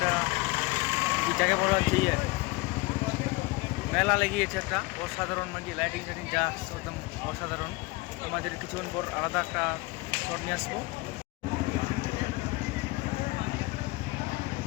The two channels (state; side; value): quieter; right; 23.2 dB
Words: যাকে বলা হচ্ছে মেলা লেগিয়েছে একটা অসাধারণ, মানে লাইটিং টাইটিং যা একদম অসাধারণ। আমাদের কিছুক্ষণ পর আলাদা একটা শট নিয়ে আসবো।